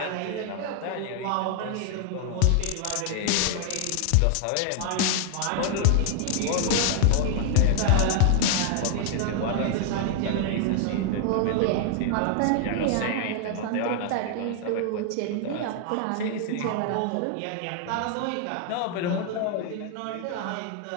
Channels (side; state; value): both; different; correlation -0.01